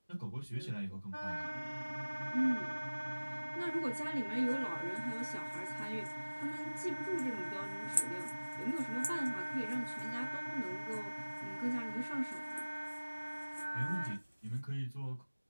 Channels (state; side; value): inverted; both; correlation -1.00